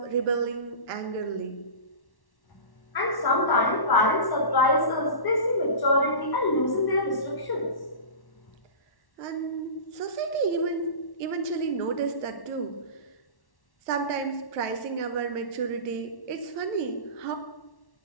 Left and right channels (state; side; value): late; right; 1.1 ms